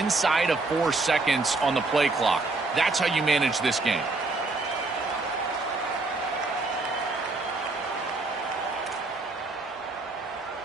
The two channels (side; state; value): left; quieter; 3.4 dB